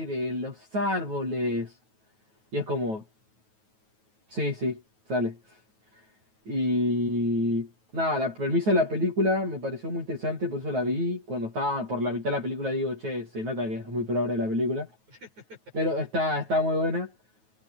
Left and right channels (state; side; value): late; left; 9.3 ms